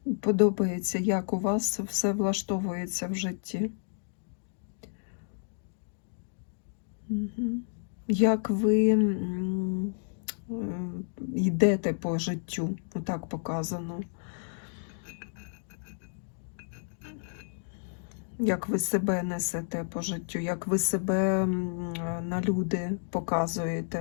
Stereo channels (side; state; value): right; silent; digital silence